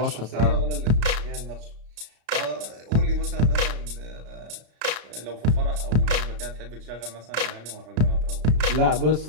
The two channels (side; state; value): left; late; 34 ms